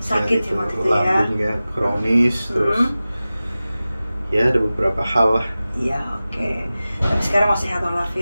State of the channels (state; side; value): inverted; both; correlation -0.96